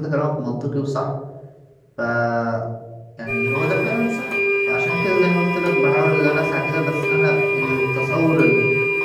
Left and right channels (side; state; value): both; identical; correlation 1.00